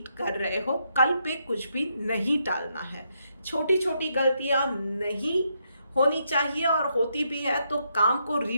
कर रहे हो, कल पे कुछ भी नहीं टालना है। छोटी छोटी गलतियां नहीं होनी चाहिए, और होती भी है तो काम को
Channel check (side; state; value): both; inverted; correlation -0.78